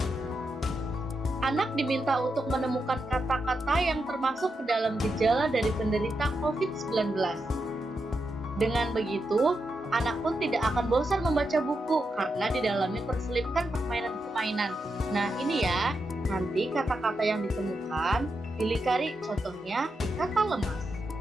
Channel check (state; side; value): normal; both; correlation 0.86